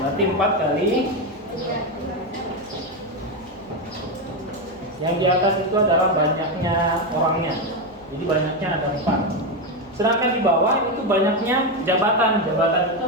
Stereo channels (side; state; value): right; noise; hum, 28 dB below the sound